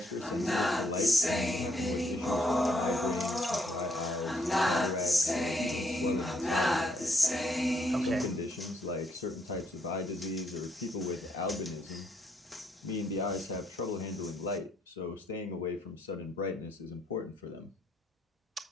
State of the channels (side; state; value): both; normal; correlation 0.71